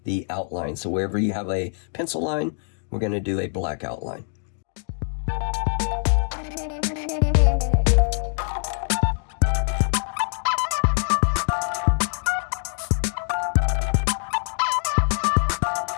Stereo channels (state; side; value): silent; right; 63 dB below the other